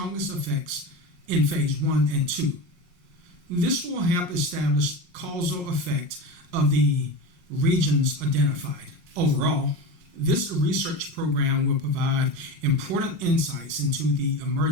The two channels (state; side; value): late; left; 5.5 ms